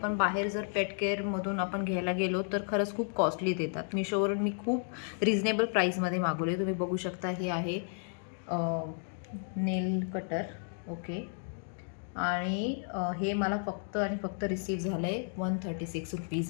बाहेर जर पेट केअरमधून आपण घ्यायला गेलो तर खरंच खूप कॉस्टली देतात. मिशोवरून मी खूप रिजनेबल प्राईसमध्ये मागवले. तुम्ही बघू शकता हे आहे नेल कटर. ओके. आणि हे मला फक्त आणि फक्त रिसीव झालं आहे 136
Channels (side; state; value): right; silent; 56 dB below the other